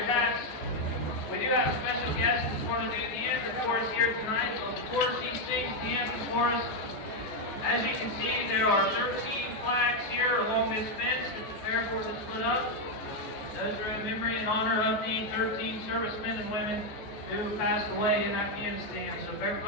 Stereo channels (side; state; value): right; late; 14 ms